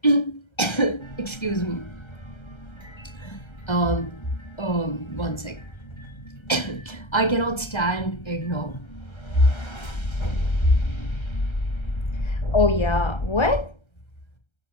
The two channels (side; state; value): right; late; 1.3 ms